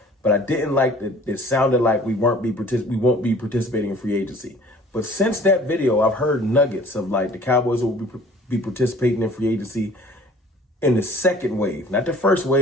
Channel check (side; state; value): both; normal; correlation 0.50